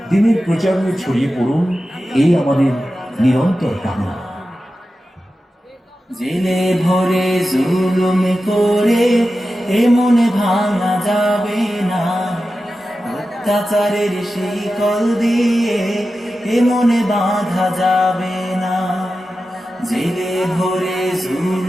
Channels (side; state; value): both; normal; correlation 0.92